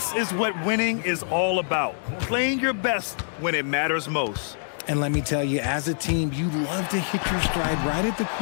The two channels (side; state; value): right; silent; digital silence